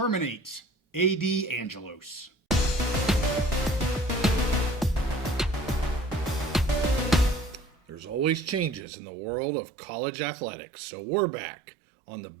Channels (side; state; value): left; drops out; at 8.8 s